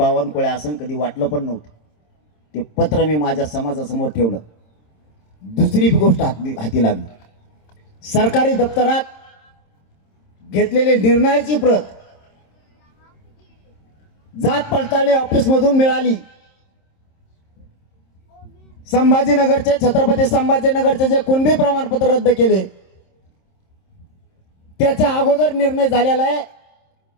असं कधी वाटलं पण नव्हतं. ते पत्र मी माझ्या समाजासमोर ठेवलं. दुसरी गोष्ट हाती लागली. सरकारी दप्तरात घेतलेली निर्णयाची प्रत जात पडताळणी ऑफिस मधून मिळाली. संभाजीनगरचे, छत्रपती संभाजीनगरचे जे कुणबी प्रमाणपत्र रद्द केले त्याच्या अगोदर निर्णय झालेला आहे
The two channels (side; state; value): right; late; 26 ms